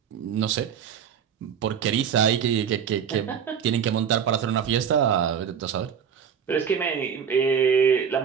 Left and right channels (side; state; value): left; quieter; 7.7 dB